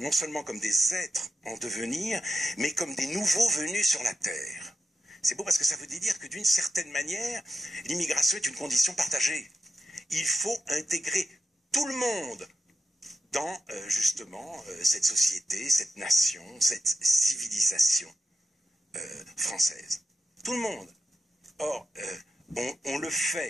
seulement comme des êtres en devenir, mais comme des nouveaux venus sur la Terre. C'est beau parce que ça veut dire que d'une certaine manière, l'immigration est une condition partagée. Il faut intégrer tout le monde dans justement cette société, cette nation, cette civilisation française. Tout le monde. Or, on le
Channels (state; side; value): normal; both; correlation 0.88